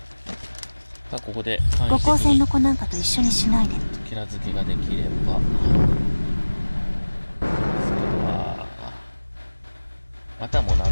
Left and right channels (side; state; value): both; inverted; correlation -1.00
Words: さあここで五光線の子なんかと一緒にしないで。キラ付けができれば。あとはもう殴